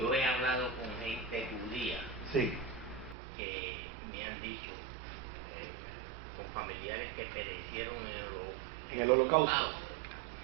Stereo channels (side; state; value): left; drops out; at 3.2 s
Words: he hablado con gente judía sí. que me han dicho, con familiares que perecieron en el holocausto.